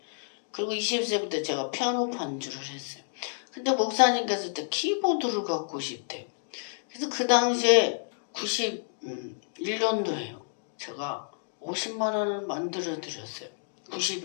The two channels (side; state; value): right; silent; digital silence